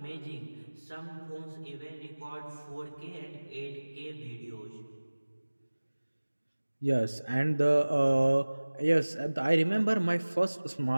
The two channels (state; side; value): inverted; both; correlation -1.00